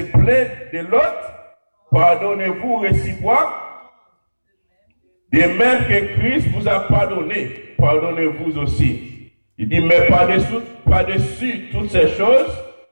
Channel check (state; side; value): inverted; both; correlation -1.00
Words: plaindre de l'autre, pardonnez-vous réciproque. De même que Christ vous a pardonné, pardonnez-vous aussi. Il dit, mais par-dessus toutes ces choses,